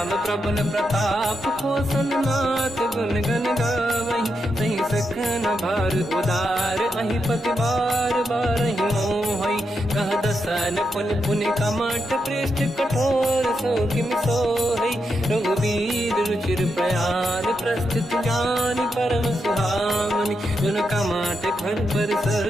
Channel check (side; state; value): both; normal; correlation 0.84